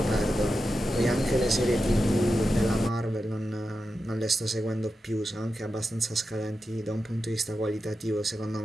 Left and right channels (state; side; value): normal; both; correlation 0.90